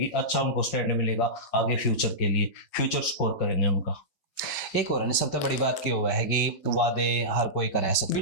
अच्छा उनको स्टैंड मिलेगा आगे फ्यूचर के लिए, फ्यूचर स्कोर करेंगे उनका। एक और सबसे बड़ी बात क्या हुआ है कि वादे हर कोई करे सकते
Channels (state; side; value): late; right; 5.2 ms